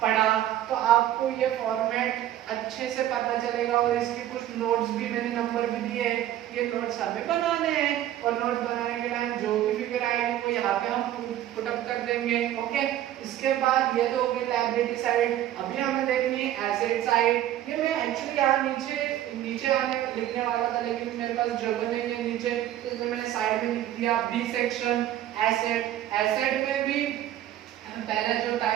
पढ़ा, तो आपको ये फॉर्मेट अच्छे से पता चलेगा। और इसके कुछ नोट्स भी मैंने नंबर भी दिए, ये नोट्स हमें बनाने हैं और नोट्स बनाने के टाइम जो भी फिगर आएगी वो यहाँ पे हम पुट अप कर देंगे। ओके, इसके बाद ये तो हो गई लायबिलिटी साइड। अभी हमें देखनी है एसेट साइड। ये मैं एक्चुअली यहाँ नीचे आने लिखने वाला था, लेकिन मेरे पास जगह नहीं है नीचे, तो इसलिए मैंने साइड में लिख दिया बी सेक्शन एसेट। एसेट में भी पहला जो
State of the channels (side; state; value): left; quieter; 12.6 dB